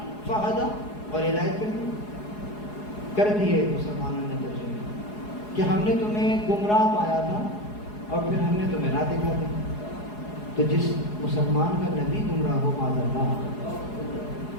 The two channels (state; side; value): late; right; 4.8 ms